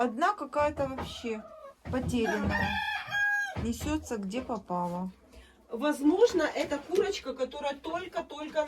какая-то вообще потерянная. Несется где попало. Возможно, это курочка, которая только-только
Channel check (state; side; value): identical; both; correlation 1.00